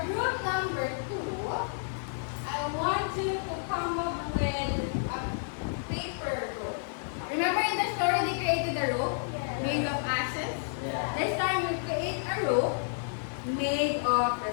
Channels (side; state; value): right; silent; 57 dB below the other